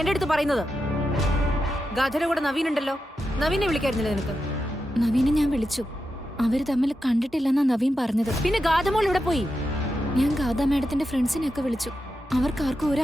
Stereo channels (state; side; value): normal; both; correlation 0.88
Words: എന്റെ അടുത്ത് പറയുന്നത്? ഗാഥയുടെ കൂടെ നവീൻ ഉണ്ടല്ലോ, നവീനെ വിളിക്കായിരുന്നില്ല നിനക്ക്? നവീനെ ഞാൻ വിളിച്ചു. അവര് തമ്മിൽ കണ്ടിട്ടില്ലെന്നാ നവീൻ പറഞ്ഞത്. പിന്നെ ഗാഥമോൾ ഇവിടെ പോയി? ഞാൻ ഗാഥ മാഡത്തിന്റെ ഫ്രണ്ട്സിനെയൊക്കെ വിളിച്ചു. അവർക്കാർക്കും ഒരു